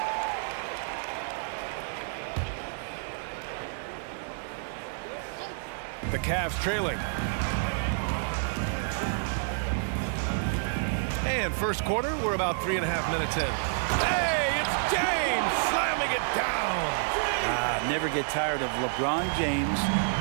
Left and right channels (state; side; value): silent; left; digital silence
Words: The Cavs trailing. And first quarter, we're about 3.5 minutes in. Hey, it's James slamming it down. Never get tired of LeBron James